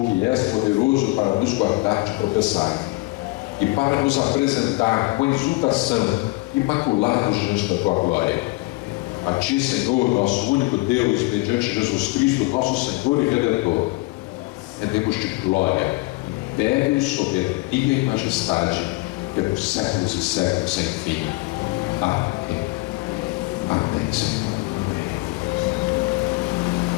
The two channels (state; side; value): quieter; right; 23.2 dB